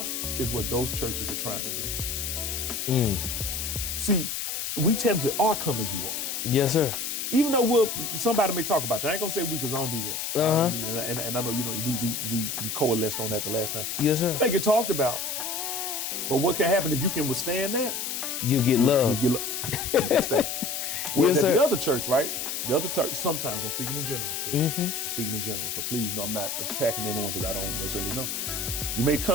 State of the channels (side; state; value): left; noise; hiss, 3 dB below the sound